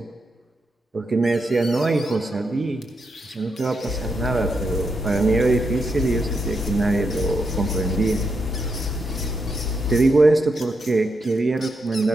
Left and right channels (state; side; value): normal; both; correlation 0.83